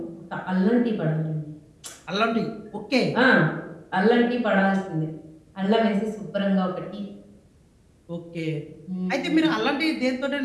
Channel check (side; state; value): both; identical; correlation 1.00